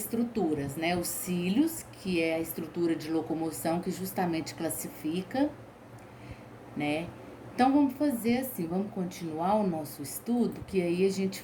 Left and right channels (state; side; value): identical; both; correlation 1.00